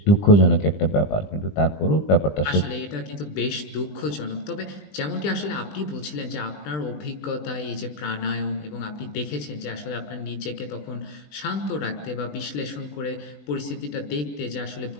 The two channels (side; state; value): right; late; 20 ms